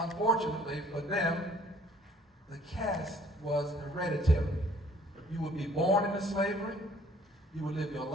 for them, the caste was hereditary. You would be born into slavery, you would live your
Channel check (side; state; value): both; normal; correlation 0.57